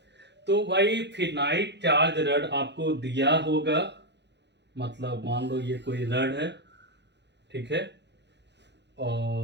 तो भाई फिनाइट चार्ज रड आपको दिया होगा, मतलब मान लो ये कोई रड है, ठीक है,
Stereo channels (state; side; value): late; left; 0.50 ms